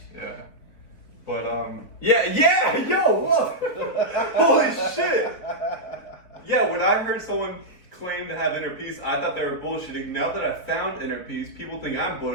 But yo, what? Holy shit! Yeah, when I heard someone claim to have inner peace, I thought they were bullshitting. Now that I found inner peace, people think I'm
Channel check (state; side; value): late; right; 4.1 ms